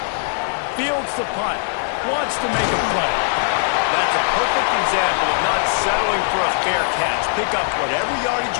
Fields the punt. Wants to make a play. That's a perfect example of not settling for a fair catch. Pick up whatever yardage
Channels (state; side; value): silent; right; digital silence